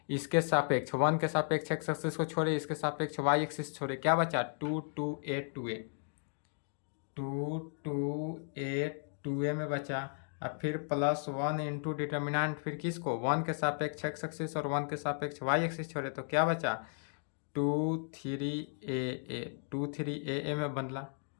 इसके सापेक्ष 1 के सापेक्ष x एक्सिस को छोड़े, इसके सापेक्ष y एक्सिस छोड़े, क्या बचा, 2 2a 2a 2 2a 2a में बचा। अब फिर +1 इंटू डिटर्मिनेंट, फिर किसको, 1 के सापेक्ष x एक्सिस और 1 के सापेक्ष y एक्सिस छोड़े, तो क्या बचा, 2 3a 2 3a में बदला।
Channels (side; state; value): right; silent; 55 dB below the other